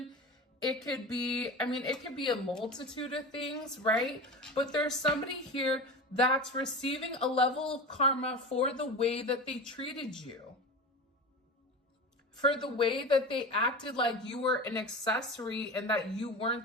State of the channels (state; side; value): normal; both; correlation 0.28